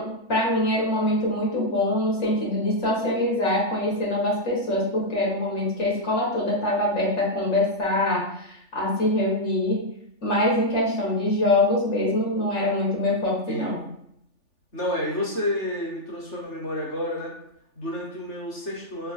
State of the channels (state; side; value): late; right; 3.4 ms